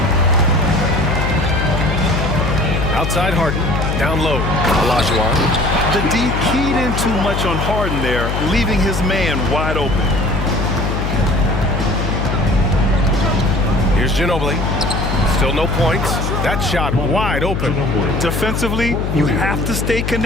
Outside Harden. Down low. Olajuwon. The D keyed in too much on Harden there, leaving his man wide open. Here's Ginobili. Still no points. That shot wide open. Defensively, you have to stay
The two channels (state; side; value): noise; left; hum, 1 dB below the sound